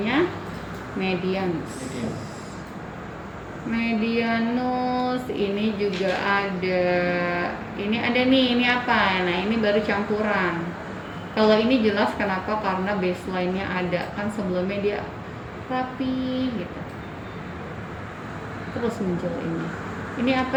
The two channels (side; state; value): both; identical; correlation 1.00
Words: medianus. Medianus ini juga ada. Ini ada nih, ini apa? Nah, ini baru campuran. Kalau ini jelas kenapa? Karena baseline-nya ada. Kan sebelumnya dia rapi gitu. Terus muncul ini. Ini